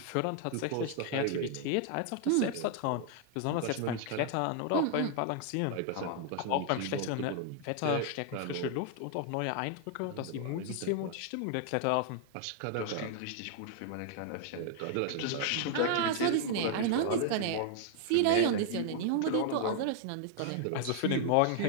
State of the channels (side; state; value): both; different; correlation 0.00